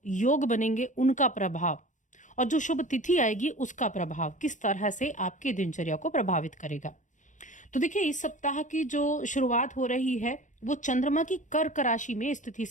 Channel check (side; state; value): right; late; 0.36 ms